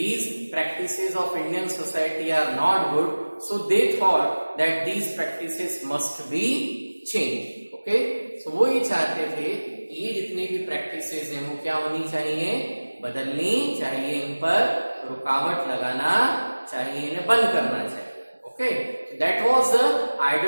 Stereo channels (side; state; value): both; inverted; correlation -1.00